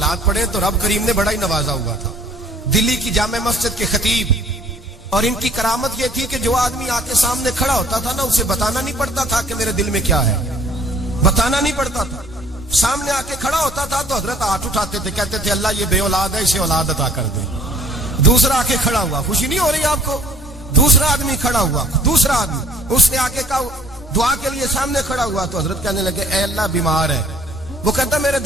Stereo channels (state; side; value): normal; both; correlation 0.55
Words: پڑھیں تو رب کریم نے بڑا ہی نوازا ہوا تھا. دلی کی جامع مسجد کے خطیب، اور ان کی کرامت یہ تھی کہ جو آدمی آ کے سامنے کھڑا ہوتا تھا نا اسے بتانا نہیں پڑتا تھا کہ میرے دل میں کیا ہے، بتانا نہیں پڑتا تھا. سامنے آ کے کھڑا ہوتا تھا تو حضرت ہاتھ اٹھاتے تھے، کہتے تھے اللہ یہ بے اولاد ہے اسے اولاد عطا کر دے. دوسرا آ کے کھڑا ہوا، خوشی نہیں ہو رہی آپ کو؟ دوسرا آدمی کھڑا ہوا، دوسرا آدمی، اس نے آ کے کہا دعا کے لیے سامنے کھڑا ہوا تو حضرت کہنے لگے اے اللہ بیمار ہے. وہ کہتا میرے